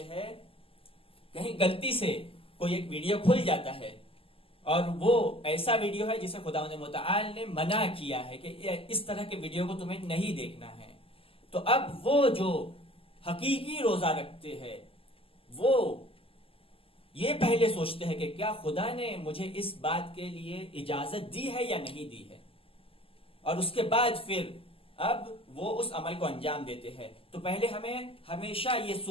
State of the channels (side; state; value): right; late; 0.26 ms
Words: ہیں. کہیں غلطی سے کوئی ایک ویڈیو کھل جاتا ہے اور وہ ایسا ویڈیو ہے جسے خداوند متعال نے منع کیا ہے کہ اس طرح کے ویڈیو کو تمہیں نہیں دیکھنا ہے. تو اب وہ جو حقیقی روزہ رکھتے ہیں وہ یہ پہلے سوچتے ہیں کہ کیا خدا نے مجھے اس بات کے لیے اجازت دی ہے یا نہیں دی ہے، اور اس کے بعد پھر اب وہ اس عمل کو انجام دیتے ہیں. تو پہلے ہمیں ہمیشہ یہ